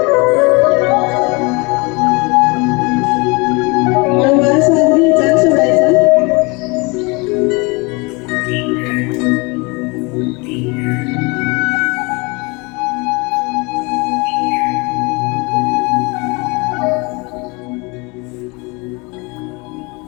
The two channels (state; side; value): quieter; right; 28.0 dB